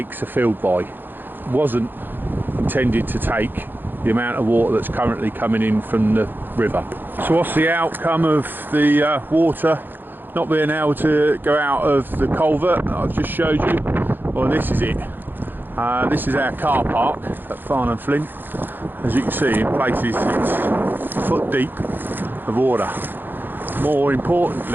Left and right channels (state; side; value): late; left; 0.094 ms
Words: are filled by. It wasn't intended to take the amount of water that's currently coming in from the river. So what's the outcome of the water not being able to go out of the culvert that I've just showed you? Well, this is it. This is our car park at Farnham Flint. As you can see, in places it's foot deep of water. More